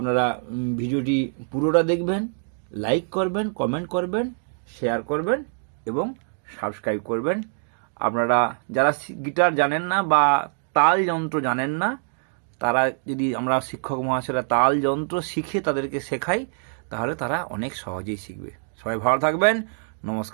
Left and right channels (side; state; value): left; silent; digital silence